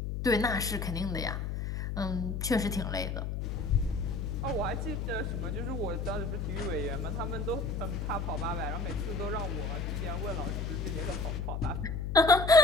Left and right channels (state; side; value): noise; left; hum, 2 dB below the sound